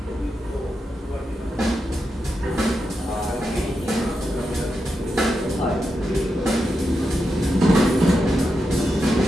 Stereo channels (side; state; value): both; normal; correlation 0.87